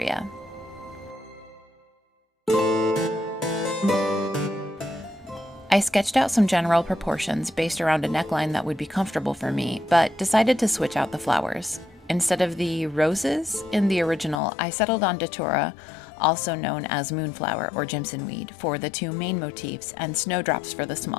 I I sketched out some general proportions based around a neckline that would be comfortable for me, but decided to switch out the flowers. Instead of the roses in the original, I settled on datura, also known as moonflower or Jimson weed, for the two main motifs and snowdrops for the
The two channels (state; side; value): drops out; right; at 14.4 s